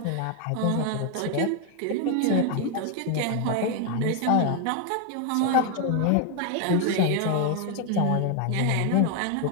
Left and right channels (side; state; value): both; different; correlation 0.01